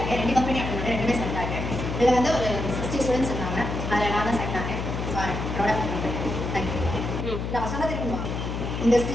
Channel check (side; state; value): left; noise; hum, 4 dB below the sound